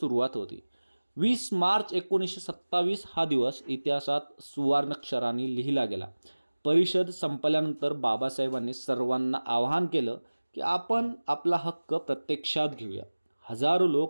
होती. 20 मार्च 1927 हा दिवस इतिहासात सुवर्णाक्षरांनी लिहिला गेला. परिषद संपल्यानंतर बाबासाहेबांनी सर्वांना आवाहन केलं की आपण आपला हक्क प्रत्यक्षात घेऊया. हजारो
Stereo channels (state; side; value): inverted; both; correlation -1.00